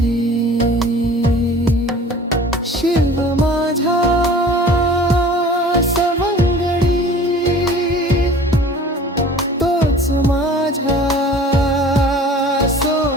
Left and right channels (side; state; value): both; normal; correlation 0.46